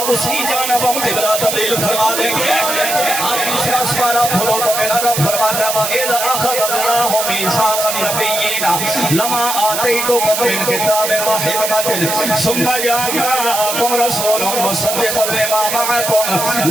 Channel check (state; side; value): noise; right; hiss, 2 dB below the sound